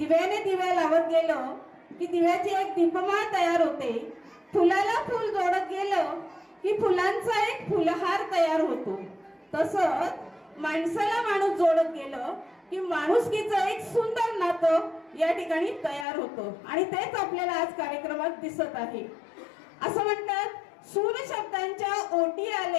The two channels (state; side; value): drops out; right; at 16.1 s